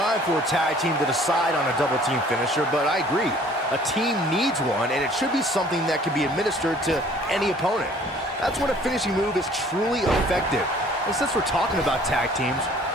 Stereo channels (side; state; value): both; normal; correlation 0.54